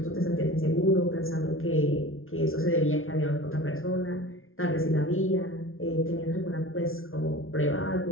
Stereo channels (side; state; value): right; late; 0.61 ms